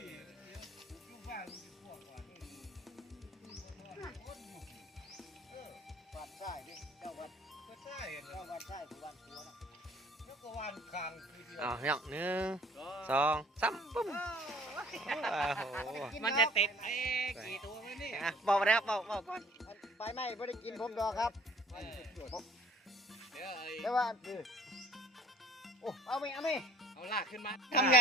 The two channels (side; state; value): both; normal; correlation 0.53